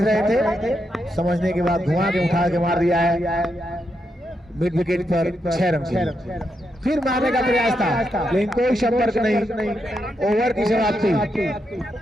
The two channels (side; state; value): both; normal; correlation 0.83